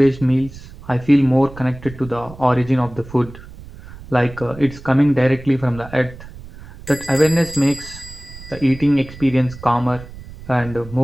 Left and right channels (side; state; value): right; noise; rumble, 17 dB below the sound